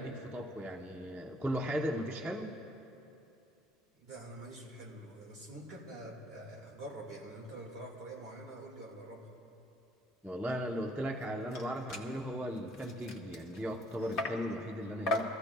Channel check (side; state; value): both; normal; correlation 0.63